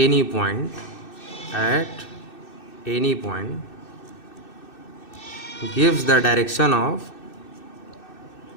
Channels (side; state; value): right; late; 2.6 ms